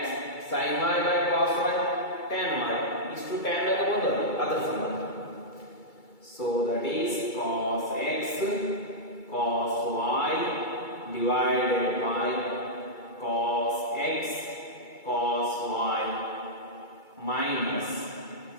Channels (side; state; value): right; late; 2.3 ms